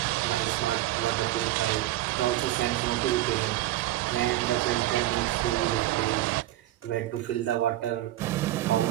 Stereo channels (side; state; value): left; quieter; 15.1 dB